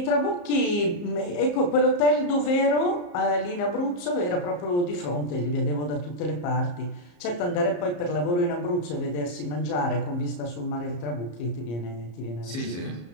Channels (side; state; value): right; late; 34 ms